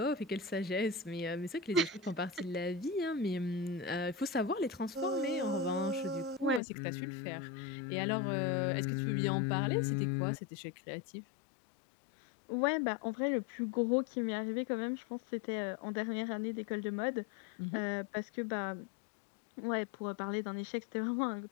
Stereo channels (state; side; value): drops out; right; at 6.6 s